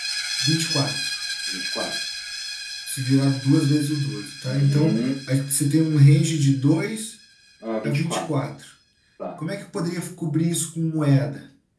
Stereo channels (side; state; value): both; identical; correlation 1.00